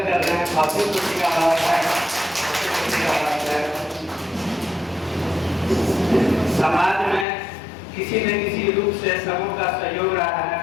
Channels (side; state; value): right; drops out; at 7.2 s